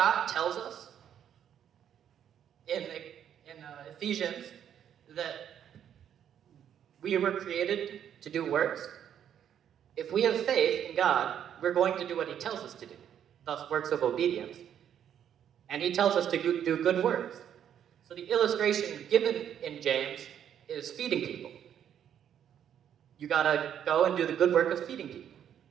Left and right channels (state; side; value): quieter; left; 9.4 dB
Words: tells us in Ephesians that we were created to do works, if we have faith in God, we're going to do what He tells us to do, thus works of obedience. And He tells us to do good works. So the illustration given in James is feeding people. You gotta go and do the good work of feeding